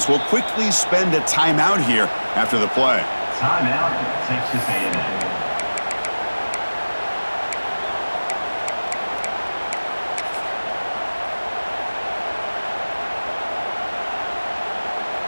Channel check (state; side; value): inverted; both; correlation -1.00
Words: will quickly spend a timeout here after the play. Timeout, Texas A&M.